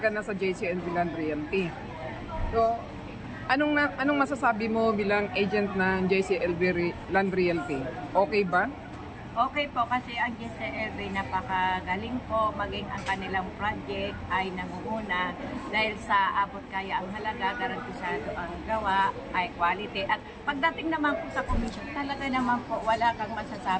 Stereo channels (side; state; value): both; identical; correlation 1.00